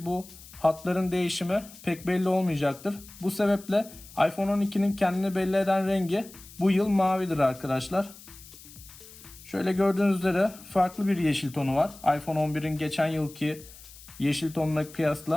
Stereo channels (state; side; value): noise; left; hiss, 19 dB below the sound